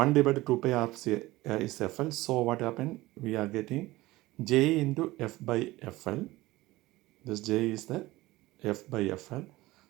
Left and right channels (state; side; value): quieter; left; 18.8 dB